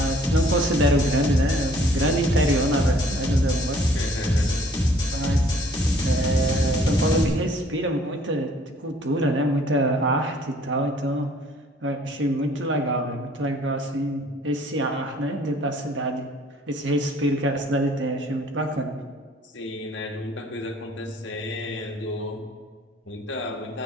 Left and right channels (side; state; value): both; normal; correlation 0.58